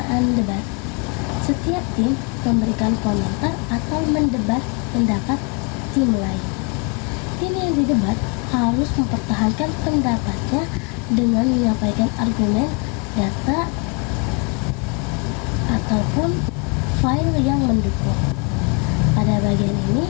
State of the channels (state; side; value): quieter; right; 33.5 dB